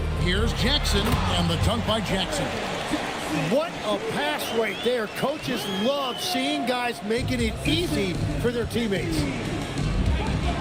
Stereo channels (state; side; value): identical; both; correlation 1.00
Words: Here's Jackson, and the dunk by Jackson. What a pass right there. Coaches love seeing guys making it easy for their teammates.